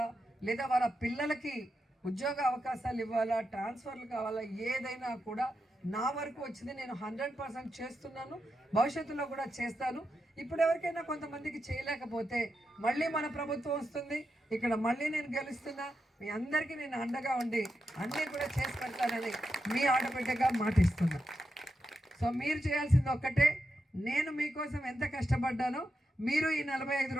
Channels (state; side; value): normal; both; correlation 0.87